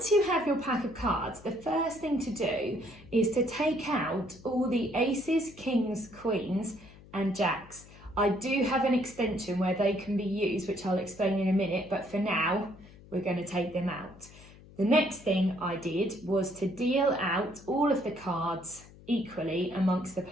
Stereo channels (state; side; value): noise; left; hum, 21 dB below the sound